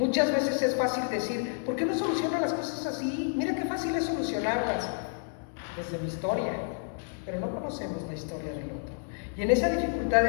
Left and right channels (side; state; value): right; silent; digital silence